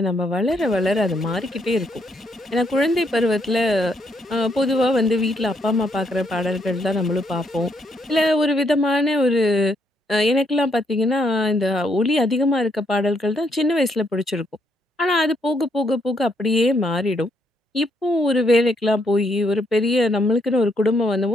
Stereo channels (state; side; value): normal; both; correlation 0.74